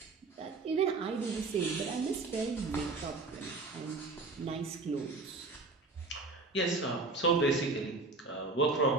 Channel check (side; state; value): left; quieter; 3.7 dB